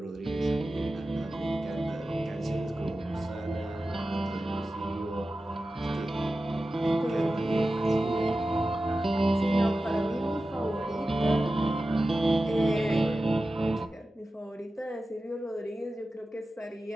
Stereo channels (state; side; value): normal; both; correlation 0.94